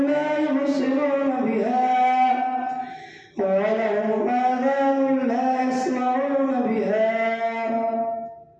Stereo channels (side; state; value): both; identical; correlation 1.00